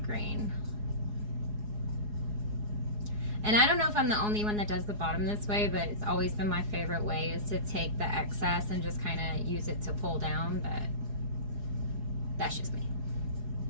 grain. And I don't know if I'm the only one that does the bottom this way, but it's always been my favorite way is to take the excess and just kind of use it to pull down, but that's just me.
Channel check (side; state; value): left; late; 4.8 ms